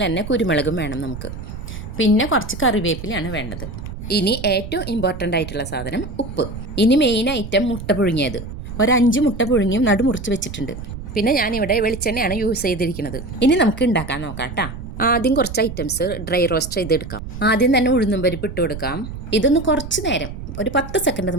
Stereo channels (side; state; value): right; noise; rumble, 10 dB below the sound